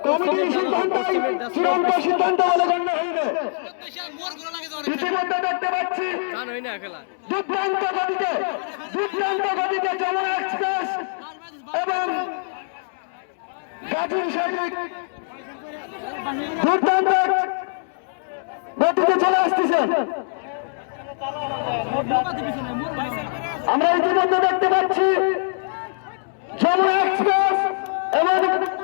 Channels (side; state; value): right; silent; 63 dB below the other